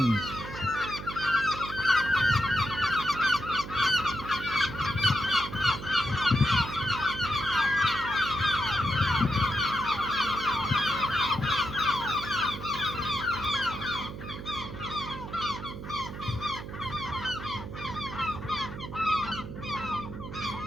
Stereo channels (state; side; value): noise; right; hum, 10 dB below the sound